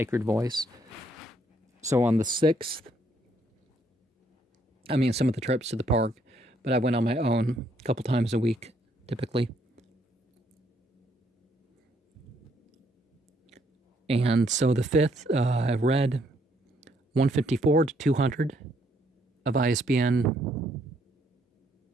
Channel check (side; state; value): both; normal; correlation 0.70